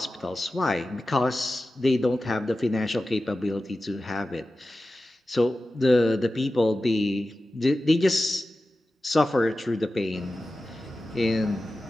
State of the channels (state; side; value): normal; both; correlation 0.94